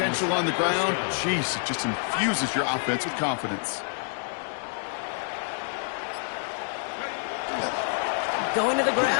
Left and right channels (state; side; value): silent; right; digital silence